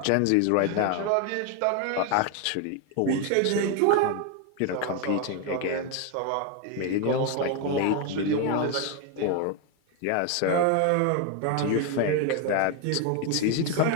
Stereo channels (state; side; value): different; both; correlation 0.01